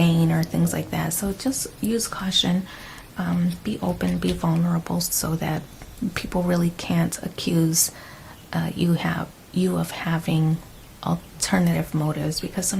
or things like that. So just use caution, be open, be vulnerable, so that people really can't accuse you of having alternative motives, because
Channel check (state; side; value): identical; both; correlation 1.00